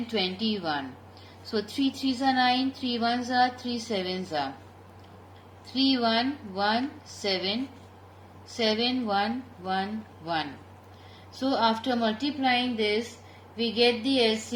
21. So 3 3s are 9, 3 1s are 3 7s are 3 1 1 7 7 1 1 1. So after multiplying this, we get the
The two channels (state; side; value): identical; both; correlation 1.00